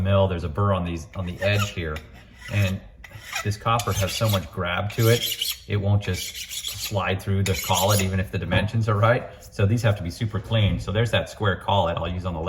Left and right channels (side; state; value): both; identical; correlation 1.00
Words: there's a burr on the edge here. And this copper has so much grab to it, it won't just slide through the collet even if the dimensions are right. So these have to be super clean. So there's that square collet I'll use on the